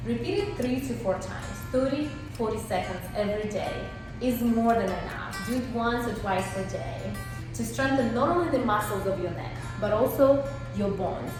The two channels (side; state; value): both; identical; correlation 1.00